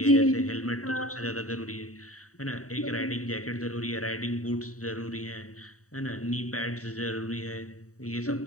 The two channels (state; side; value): late; right; 0.66 ms